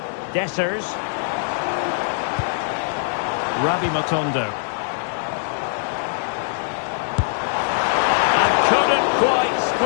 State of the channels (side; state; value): right; silent; digital silence